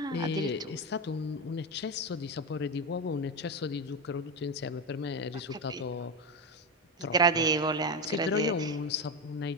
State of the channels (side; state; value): both; normal; correlation 0.14